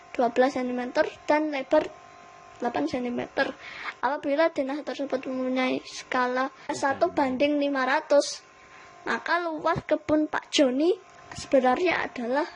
12 cm dan lebar 8 cm. Apabila denah tersebut mempunyai skala 1 banding 500, maka luas kebun Pak Joni sebenarnya adalah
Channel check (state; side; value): identical; both; correlation 1.00